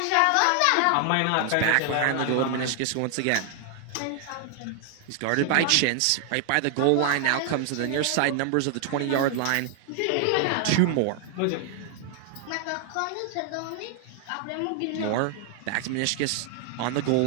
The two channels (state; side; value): different; both; correlation 0.00